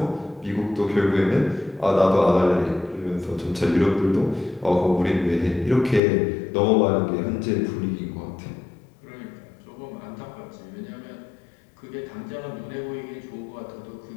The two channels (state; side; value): drops out; right; at 6.0 s